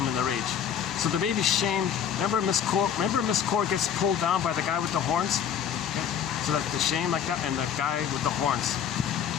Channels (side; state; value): right; quieter; 8.5 dB